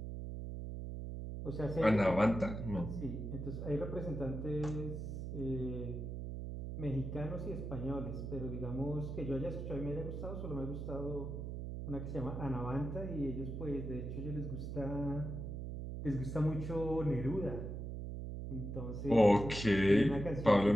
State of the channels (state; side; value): noise; right; hum, 6 dB below the sound